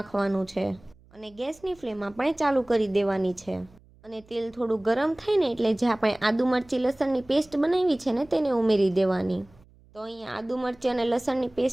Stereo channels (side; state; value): right; noise; hum, 28 dB below the sound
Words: છે અને ગેસની ફ્લેમ આપણે ચાલુ કરી દેવાની છે. અને તેલ થોડું ગરમ થાય ને એટલે જે આપણે આદુ મરચી લસણની પેસ્ટ બનાવી છે ને તેને ઉમેરી દેવાની. તો અહીંયા આદુ મરચી અને લસણની